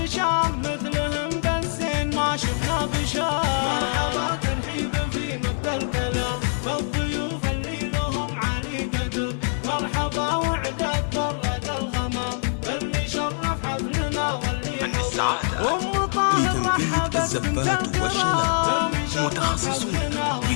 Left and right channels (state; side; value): silent; right; 58 dB below the other